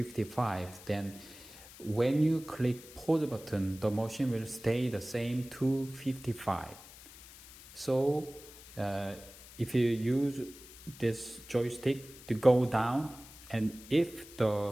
Then when you click pause button, the machine will stay the same 255. So if you use this joystick to go down, and if the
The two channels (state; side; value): noise; left; hiss, 18 dB below the sound